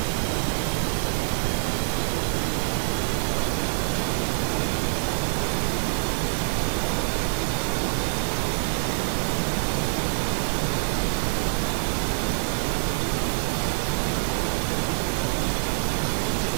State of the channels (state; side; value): silent; left; digital silence